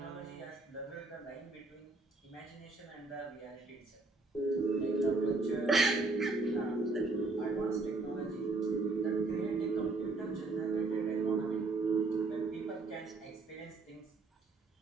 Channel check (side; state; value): left; quieter; 3.5 dB